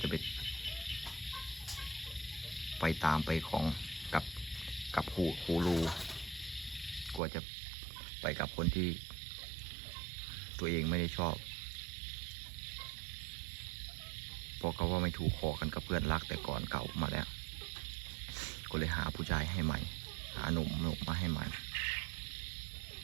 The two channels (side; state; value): left; drops out; at 7.2 s